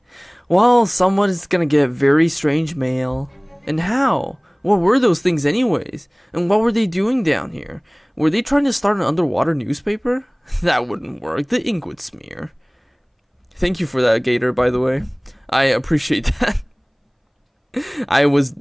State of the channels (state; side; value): identical; both; correlation 1.00